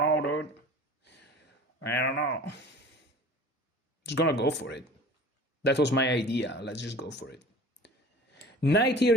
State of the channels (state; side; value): normal; both; correlation 0.42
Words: dude. I don't know. Just gonna go for it. That was my idea. Let's just go for it. Knight here